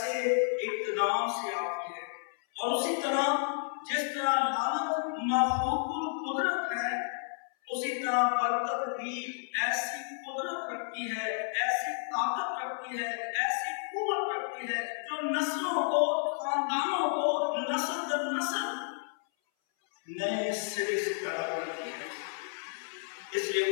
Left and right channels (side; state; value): right; silent; 57 dB below the other